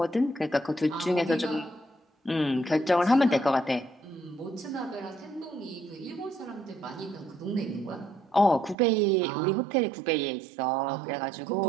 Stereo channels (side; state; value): left; drops out; at 8.8 s